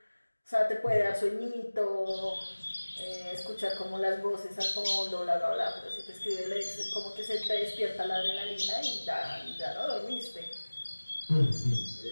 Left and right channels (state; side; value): inverted; both; correlation -1.00